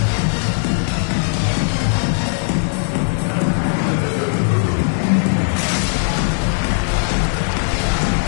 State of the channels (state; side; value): silent; right; 67 dB below the other